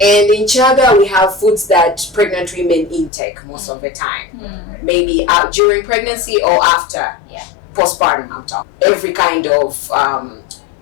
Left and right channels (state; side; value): drops out; right; at 3.1 s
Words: And in Chaga, we have foods that pregnant women intake most of the time. Maybe during pregnancy or after. Yeah. Postpartum, I'm talking. Every kind of